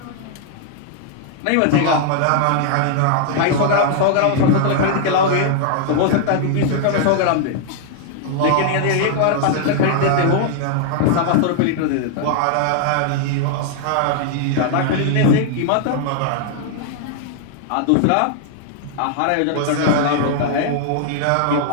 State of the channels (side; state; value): both; different; correlation 0.00